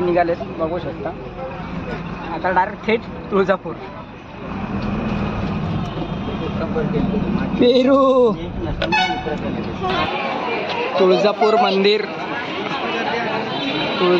बघू शकता. आता डायरेक्ट थेट तुळजापूर. पेरू तुळजापूर मंदिर,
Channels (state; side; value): identical; both; correlation 1.00